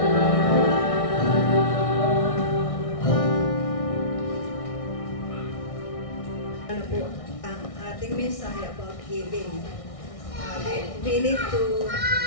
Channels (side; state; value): right; late; 1.6 ms